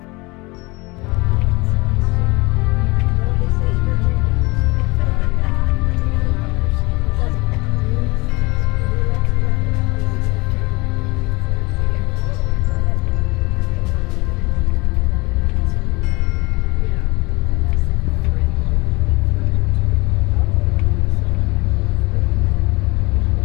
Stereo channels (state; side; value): quieter; right; 24.3 dB